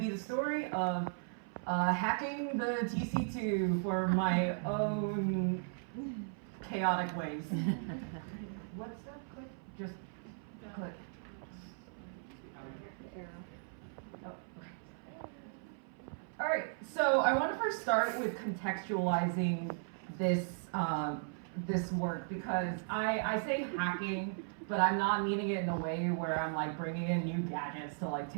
the story of hacking the TC2 for my own chaotic ways. What's that? Click? Just click. Oh, okay. All right, so I want to first start with contextualizing this this work because I say hacking, but I'm not meaning it in a way where I'm like bringing in new gadgets to like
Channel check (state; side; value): silent; left; 53 dB below the other